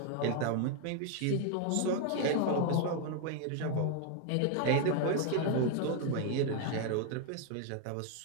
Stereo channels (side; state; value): both; different; correlation 0.01